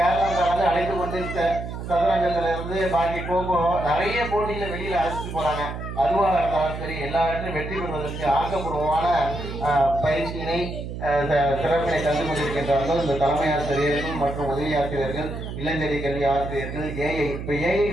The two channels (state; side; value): noise; right; hum, 7 dB below the sound